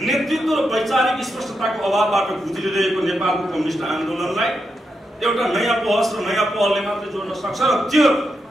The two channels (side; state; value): both; normal; correlation 0.85